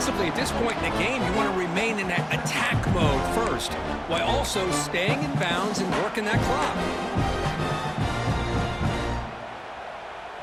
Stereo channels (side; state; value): both; identical; correlation 1.00